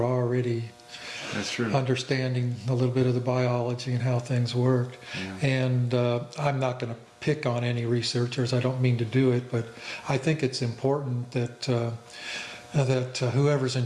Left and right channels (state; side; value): identical; both; correlation 1.00